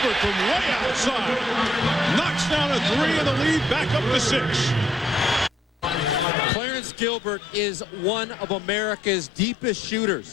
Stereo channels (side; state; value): right; drops out; at 6.2 s